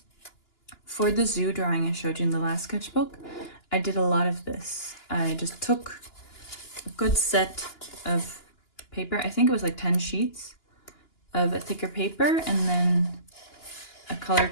For the zoo drawing I showed you in the last sketchbook, I did a lot of this. I just took a good set of paper, I think it was like 10 sheets of a thicker paper, and then a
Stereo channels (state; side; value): late; right; 2.9 ms